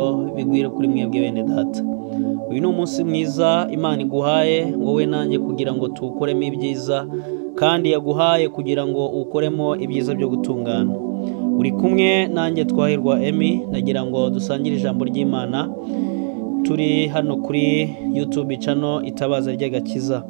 bigwire kuri mwebwe bene data. Uyu ni umunsi mwiza Imana iguhaye wowe nanjye kugira ngo tuwukoremo ibyiza, kandi yaguhaye kugira ngo ukoremo ibyiza byo gutungana. Uri kumwe nanjye Twahirwa Emmy, nagira ngo dusangire ijambo ry'Imana. Turi hano kuri YouTube channel Itabaza ry'Agakiza.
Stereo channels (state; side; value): silent; left; 65 dB below the other